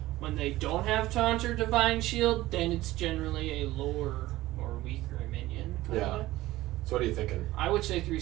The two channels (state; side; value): quieter; left; 16.9 dB